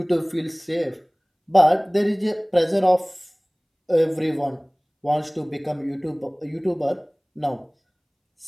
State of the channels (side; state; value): both; identical; correlation 1.00